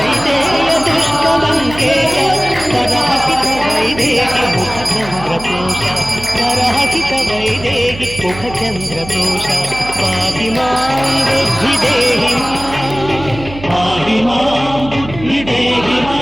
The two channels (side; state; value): right; noise; hum, 13 dB below the sound